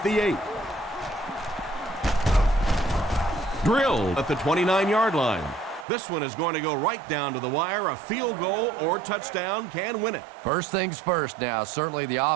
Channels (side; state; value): left; drops out; at 5.9 s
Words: the 8. Drilled at the 29-yard line. This one is going to go right down to the wire. A field goal or touchdown can win it. First things first now. Certainly the